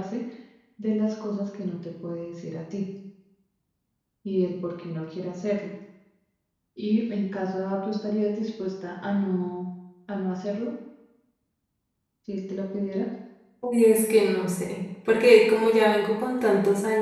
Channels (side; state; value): both; identical; correlation 1.00